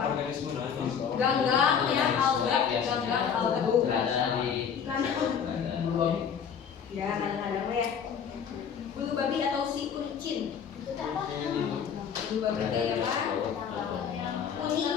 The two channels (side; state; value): right; quieter; 7.4 dB